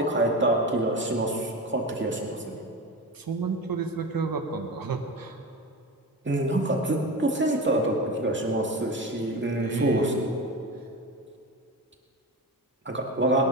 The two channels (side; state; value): both; normal; correlation 0.26